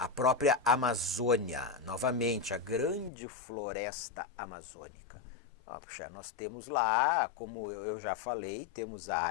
Amazônia, novamente, a grande floresta amazônica. Puxa, nós temos lá, como eu já falei, temos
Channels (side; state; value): right; drops out; at 3.1 s